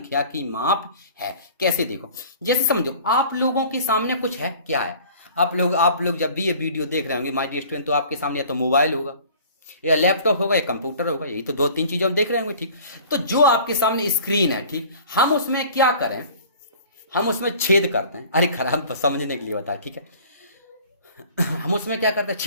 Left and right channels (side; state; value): both; inverted; correlation -0.47